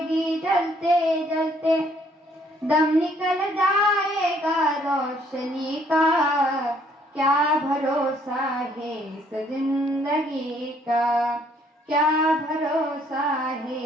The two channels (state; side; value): normal; both; correlation 0.64